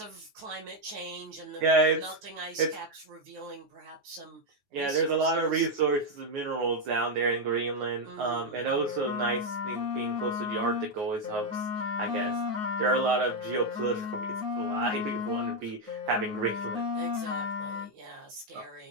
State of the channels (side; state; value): left; late; 9.4 ms